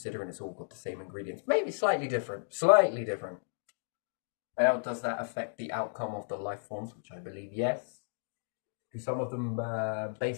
it's all got the same ingredients. Maybe slightly different. Slightly different. How does that affect the outcome of the life forms? Which I believe yes. Do some of them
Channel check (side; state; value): right; silent; digital silence